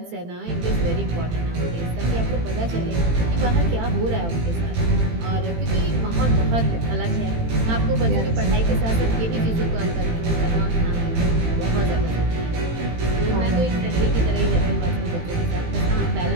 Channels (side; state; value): left; late; 18 ms